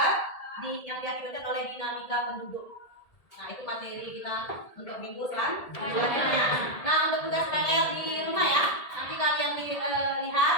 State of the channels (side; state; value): right; late; 1.8 ms